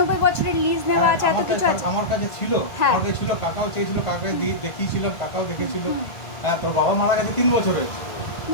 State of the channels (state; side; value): late; right; 1.8 ms